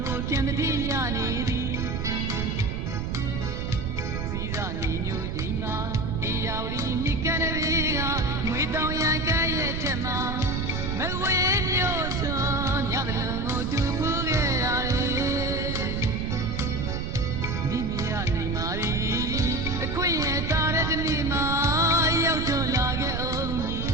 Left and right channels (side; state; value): right; noise; rumble, 3 dB below the sound